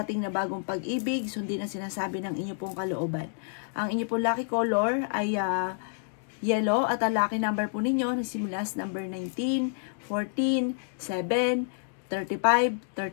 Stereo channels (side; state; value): right; silent; digital silence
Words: na bagong pag-ibig, sundin ang sinasabi ng inyo pong kalooban. Ang inyo pong lucky color ay yellow at ang lucky number po ninyo nagsimula sa number 19, 14, 7, 35,